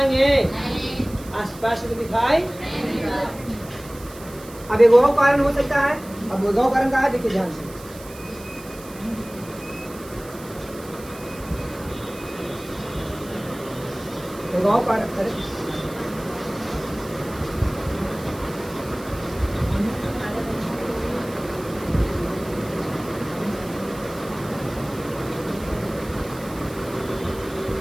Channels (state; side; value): noise; right; hiss, 18 dB below the sound